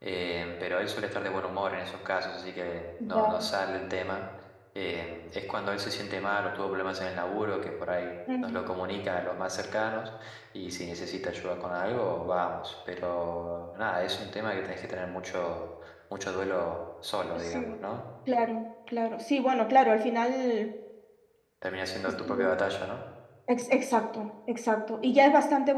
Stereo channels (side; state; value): both; identical; correlation 1.00